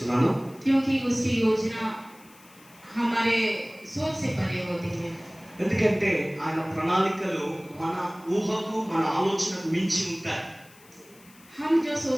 क्योंकि उसकी योजना हमारे सोच से परे होती है. ఎందుకంటే ఆయన ప్రణాళికలు మన ఊహకు మన ఆలోచనకు మించి ఉంటాయి. हम जो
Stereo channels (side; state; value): left; noise; hiss, 25 dB below the sound